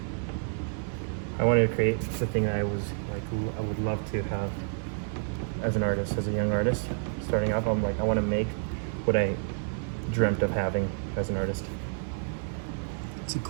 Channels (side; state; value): left; silent; 58 dB below the other